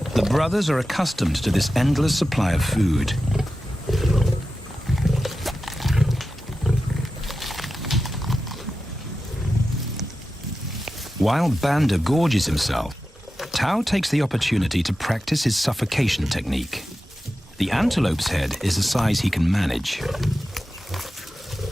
The brothers are accustomed to this endless supply of food. While Banda gorges himself, Tao takes the opportunity to practice his suffocation technique. The antelope's head is a size he can manage.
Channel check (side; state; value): both; normal; correlation 0.92